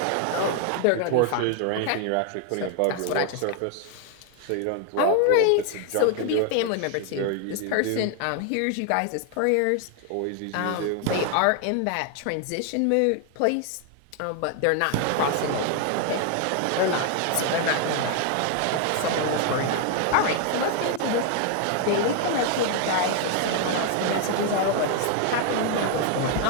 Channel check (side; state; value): both; different; correlation 0.00